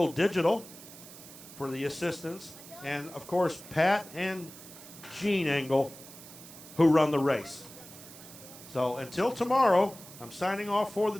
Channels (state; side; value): noise; right; hiss, 17 dB below the sound